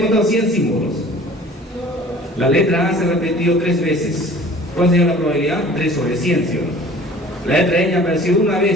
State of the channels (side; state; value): both; normal; correlation 0.47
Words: 100 símbolos. La letra A se ha repetido 3 veces. ¿Cuál sería la probabilidad? 3 sobre 100, ¿sí o no? La letra N ha aparecido una